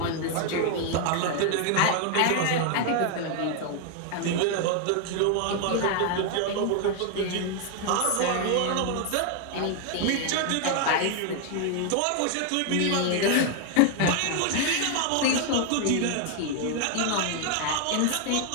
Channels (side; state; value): both; different; correlation 0.00